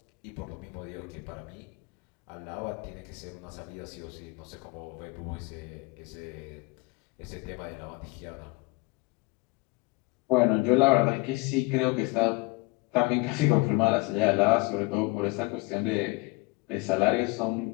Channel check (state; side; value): quieter; right; 24.9 dB